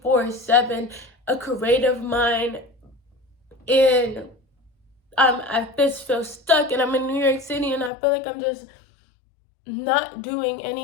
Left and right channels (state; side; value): drops out; right; at 7.9 s